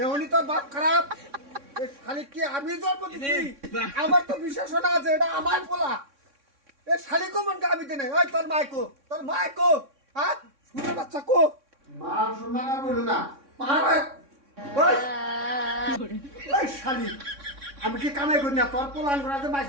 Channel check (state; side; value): late; left; 3.6 ms